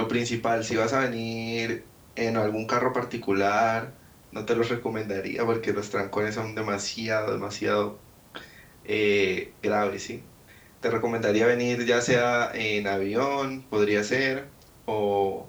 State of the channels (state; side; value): identical; both; correlation 1.00